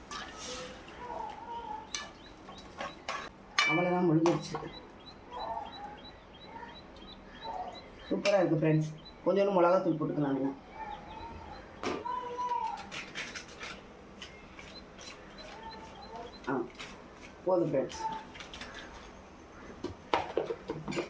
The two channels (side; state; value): both; identical; correlation 1.00